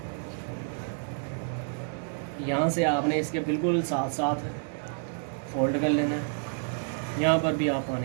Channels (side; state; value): left; silent; 58 dB below the other